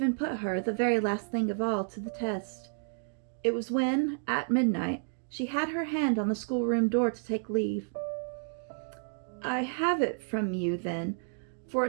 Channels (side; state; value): left; silent; digital silence